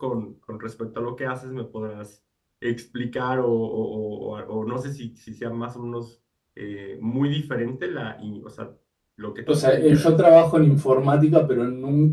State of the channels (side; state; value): both; identical; correlation 1.00